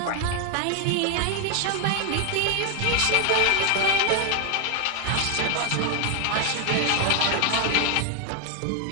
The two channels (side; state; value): both; different; correlation 0.00